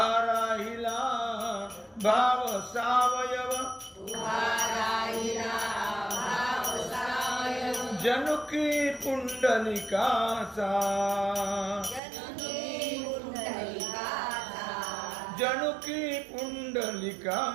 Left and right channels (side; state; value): left; drops out; at 12.0 s